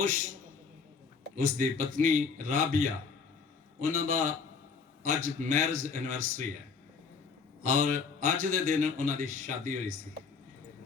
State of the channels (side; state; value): right; quieter; 5.3 dB